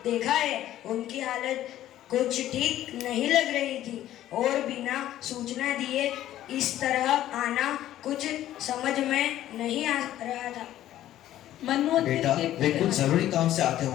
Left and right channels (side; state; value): right; quieter; 13.1 dB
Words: देखा है। उनकी हालत कुछ ठीक नहीं लग रही थी और बिना सूचना दिए इस तरह आना कुछ समझ में नहीं आ रहा था। मनोवती बेटा, वे कुछ जरूरी काम से आते